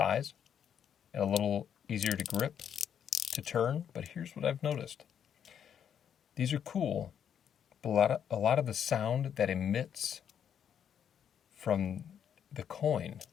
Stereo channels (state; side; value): quieter; right; 8.6 dB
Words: and a little easier to grip, to turn. But here's what I've noticed. These are cool. A lot of the sound that emits from the coin